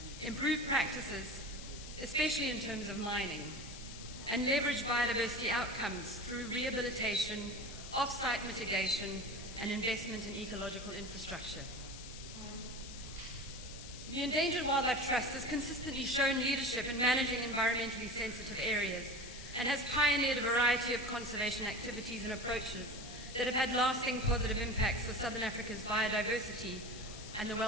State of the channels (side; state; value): left; noise; hiss, 13 dB below the sound